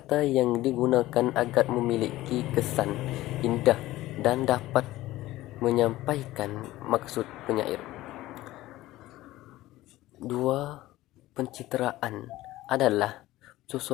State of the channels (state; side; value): quieter; right; 16.6 dB